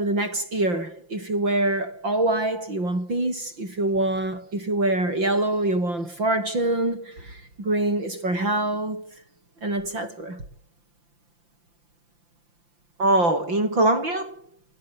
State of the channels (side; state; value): left; late; 5.8 ms